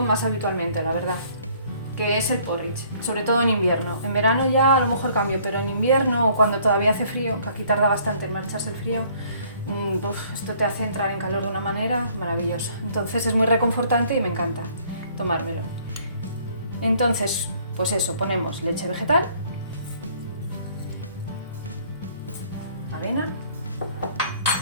más habitualmente, la verdad. que es el porridge, sobre todo en invierno. En verano ya a lo mejor cambio, pero en invierno o cuando todavía hace frío, que aquí tarda bastante en marcharse el frío, esto te hace entrar en calor de una manera maravillosa. Entonces es muy reconfortante y me encanta tomármelo. Entonces, pues eso, ponemos leche vegetal, avena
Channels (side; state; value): both; inverted; correlation -0.59